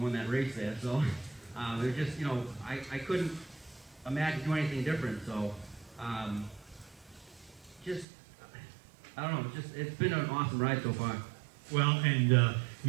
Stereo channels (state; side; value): drops out; left; at 8.1 s